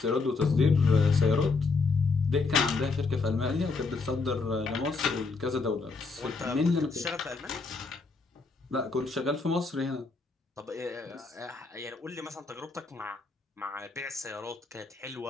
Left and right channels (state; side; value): quieter; right; 4.2 dB